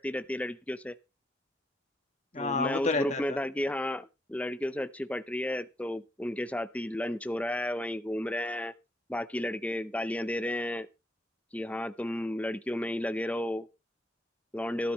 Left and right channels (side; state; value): both; normal; correlation 0.75